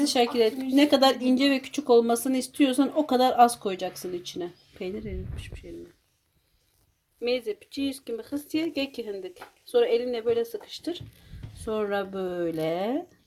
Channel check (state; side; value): identical; both; correlation 1.00